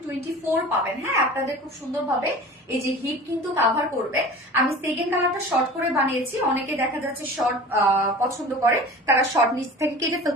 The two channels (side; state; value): both; normal; correlation 0.39